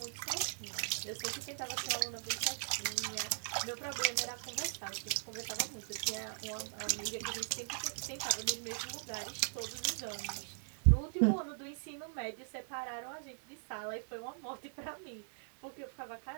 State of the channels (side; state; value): left; silent; digital silence